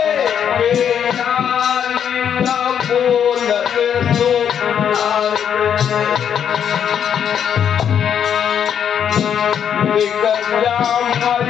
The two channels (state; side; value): quieter; right; 8.5 dB